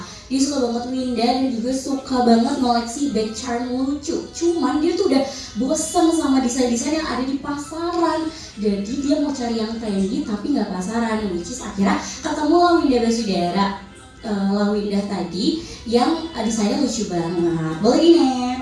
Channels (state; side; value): identical; both; correlation 1.00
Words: Dia suka banget Windah dan juga suka banget ngoleksi bag charm lucu. Cuman dia tuh udah bosen sama desain-desain yang ada di pasaran. Jadi dia mau cari yang trendy tapi nggak pasaran. Which is akhirnya ketemu lah Windah Basudara, Windah tadi yang desainnya lucu banget. Boleh di